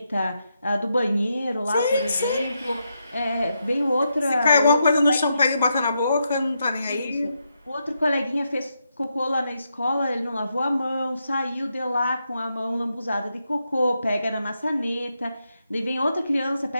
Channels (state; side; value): inverted; both; correlation -0.83